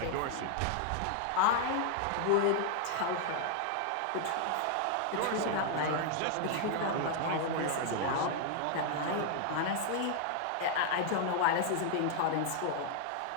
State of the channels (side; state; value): both; different; correlation 0.00